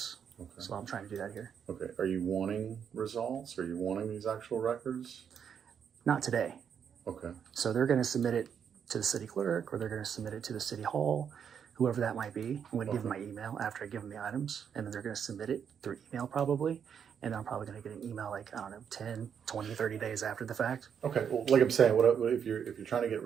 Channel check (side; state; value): left; quieter; 7.7 dB